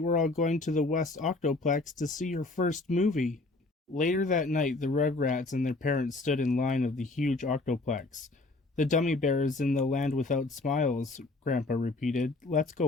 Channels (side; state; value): right; quieter; 3.2 dB